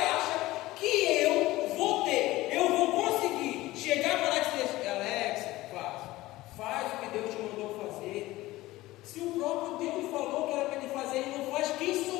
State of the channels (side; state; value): right; quieter; 17.9 dB